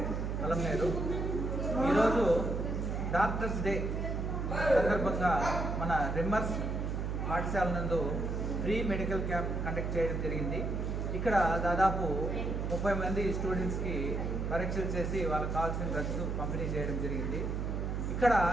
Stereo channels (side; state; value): right; noise; hum, 1 dB below the sound